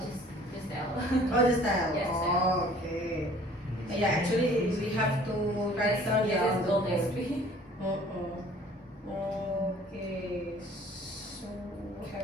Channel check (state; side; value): normal; both; correlation 0.52